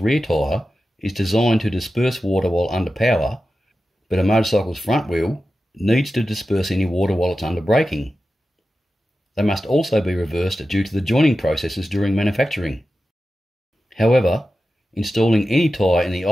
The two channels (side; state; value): both; normal; correlation 0.93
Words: tyre is designed to disperse water while under power, but a motorcycle's front wheel needs to disperse any water while it's under braking. They must also be reversed due to the joining processes during manufacturing. However, installing any tyre in the